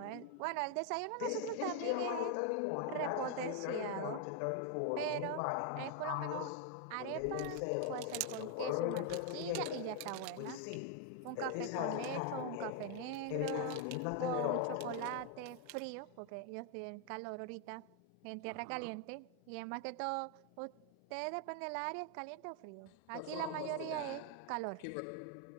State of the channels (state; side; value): different; both; correlation 0.01